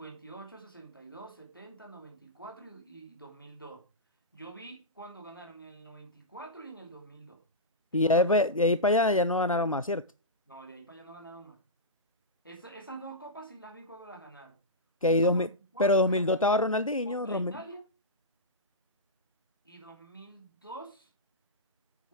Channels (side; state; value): both; normal; correlation -0.13